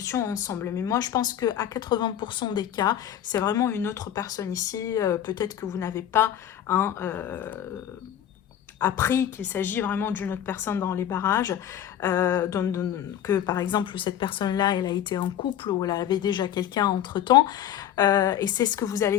ensemble. Mais moi, je pense qu'à 80% des cas, c'est vraiment une autre personne ici. Peut-être que vous n'avez pas hein, appris qu'il s'agit vraiment d'une autre personne dans les barrages, que par exemple cette personne-là, elle a été en couple ou elle avait déjà quelqu'un entre-temps, et c'est ce que vous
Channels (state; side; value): quieter; right; 10.6 dB